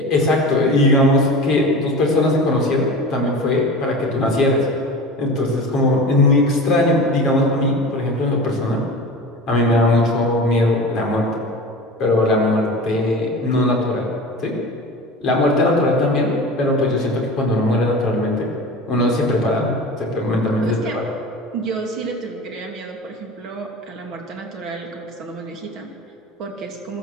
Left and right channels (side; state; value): both; normal; correlation 0.33